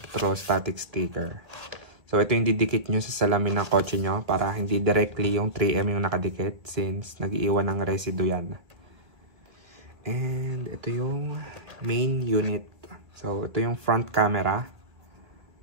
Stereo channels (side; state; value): left; late; 1.8 ms